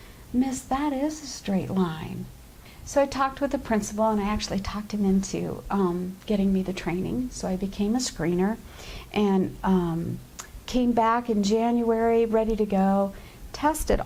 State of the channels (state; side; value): identical; both; correlation 1.00